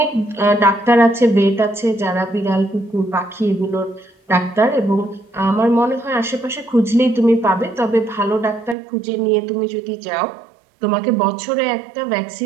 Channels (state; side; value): drops out; left; at 8.8 s